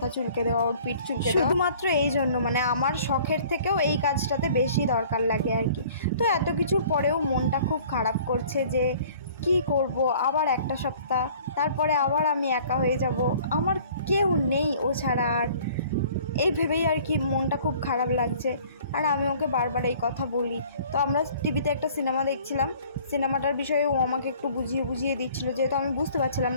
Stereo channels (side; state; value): both; inverted; correlation -0.52